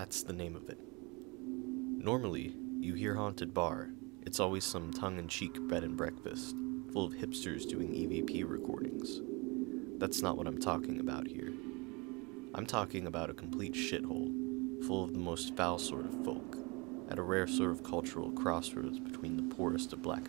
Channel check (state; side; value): quieter; left; 27.9 dB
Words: the name of it. Normally, you hear haunted bar, it's always some tongue-in-cheek bed and breakfast, full of hipsters doing EVP recordings. That's not what I'm talking about here. I'm talking about a complete shithole, full of the most foul sort of folk, at a rare sort of cultural crossroads between the poorest of black